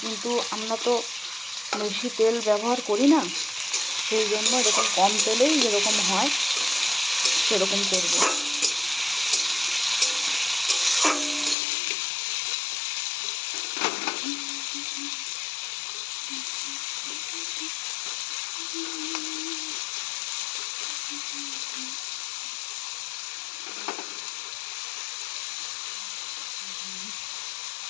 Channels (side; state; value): right; drops out; at 11.6 s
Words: কিন্তু আমরা তো বেশি তেল ব্যবহার করি না, সেই জন্য এরকম কম তেলেই যেরকম হয় সেরকম করব।